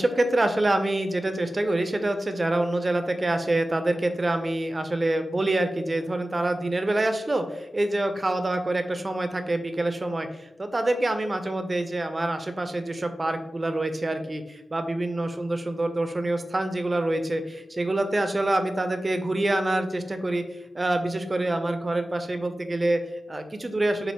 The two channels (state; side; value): normal; both; correlation 0.96